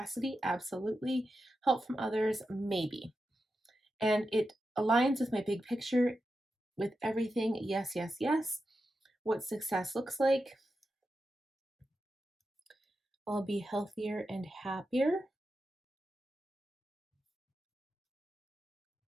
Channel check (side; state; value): both; normal; correlation 0.89